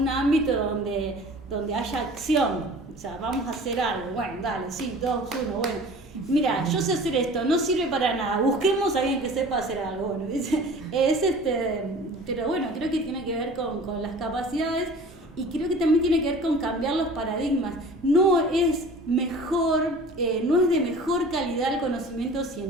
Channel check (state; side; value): normal; both; correlation 0.43